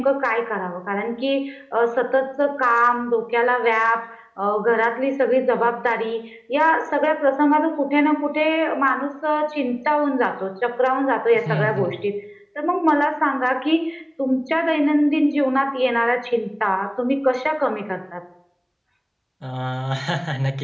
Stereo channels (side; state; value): both; identical; correlation 1.00